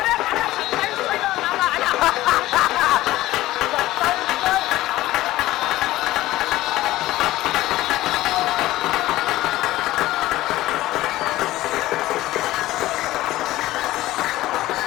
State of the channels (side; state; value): right; quieter; 16.4 dB